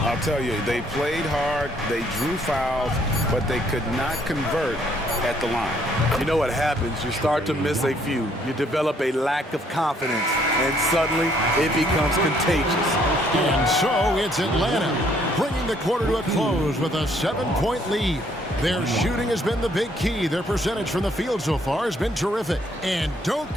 tell you, they played hard, they drew fouls, but they could not convert at the line. You know what happens? You start to miss a few. You develop a lack of confidence, and suddenly it becomes contagious. And so it's Atlanta bringing the quarter to a close with a 7-point lead. Their shooting has been the big key. Their percentage from the field so far has been terrific. And don't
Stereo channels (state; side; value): normal; both; correlation 0.66